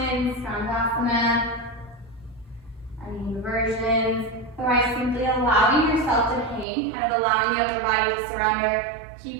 Skandasana, any inversions. Otherwise, simply allowing yourself to hang, kind of allowing the upper body to surrender,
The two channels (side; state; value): left; drops out; at 6.7 s